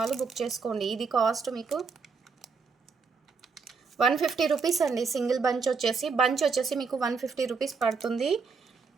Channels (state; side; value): quieter; left; 5.1 dB